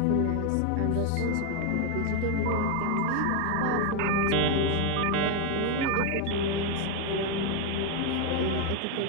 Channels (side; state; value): both; different; correlation 0.01